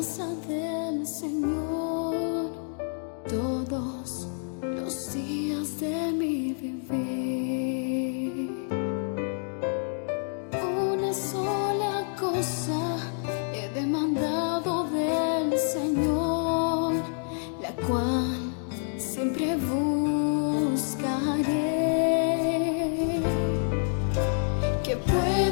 del Señor todos los días de mi vivir. Una sola cosa he demandado del Señor, la cual siempre buscaré, que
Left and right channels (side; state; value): right; silent; 59 dB below the other